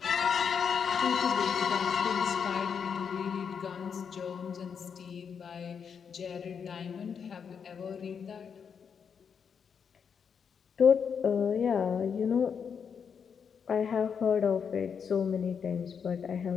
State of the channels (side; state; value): right; quieter; 6.8 dB